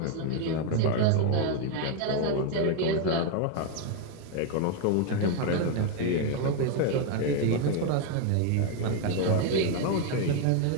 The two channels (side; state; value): both; different; correlation 0.01